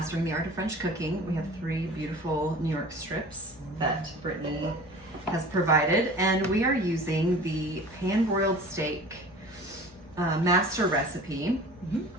the Art of French Cooking. We have 3 beautiful New York strips that Brittany has provided, and we are using the pan-broiled steak master recipe. Mm-hmm.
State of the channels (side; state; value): both; normal; correlation 0.41